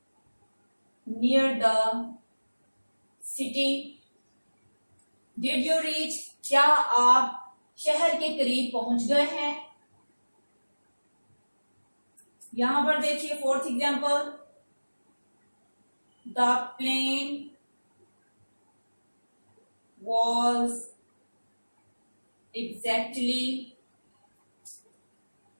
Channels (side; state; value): both; inverted; correlation -1.00